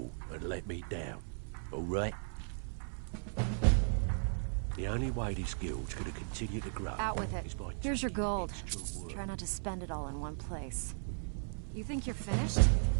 and let me down, all right? The only way this guild's gonna continue to grow... Out with it. is by Here's your taking gold. extra work. Try not to spend it all in one place. You think you're finished?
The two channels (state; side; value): silent; left; 54 dB below the other